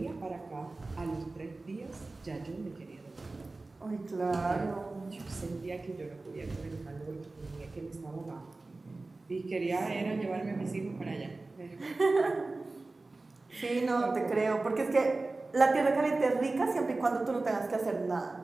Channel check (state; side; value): quieter; left; 3.3 dB